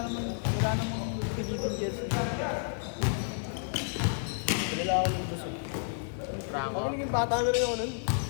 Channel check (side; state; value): right; silent; 57 dB below the other